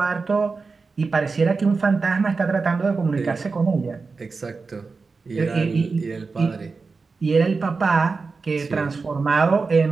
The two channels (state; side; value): quieter; left; 4.4 dB